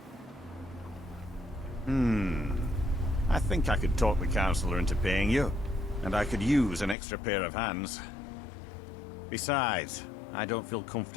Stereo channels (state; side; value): drops out; right; at 7.0 s